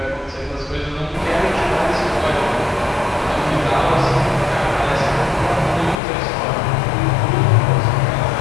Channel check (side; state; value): right; drops out; at 6.0 s